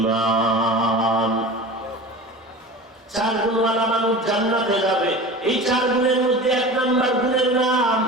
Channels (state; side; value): normal; both; correlation 0.34